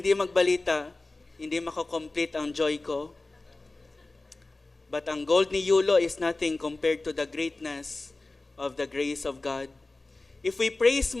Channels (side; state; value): right; quieter; 3.2 dB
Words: magbalita. Hindi makakomplete ang joy ko. But ang gold ni Yulo is nothing compared to the greatness of the grace of God. If we praise